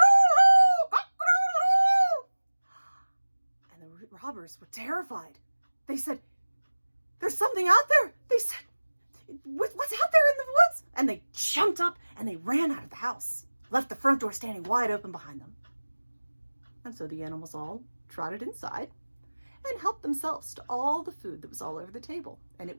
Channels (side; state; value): both; inverted; correlation -1.00